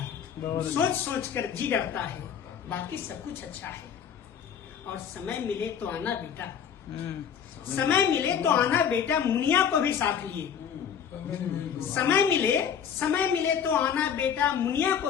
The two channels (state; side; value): quieter; right; 8.0 dB